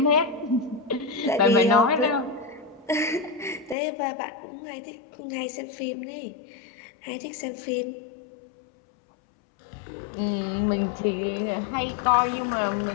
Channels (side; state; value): right; drops out; at 3.8 s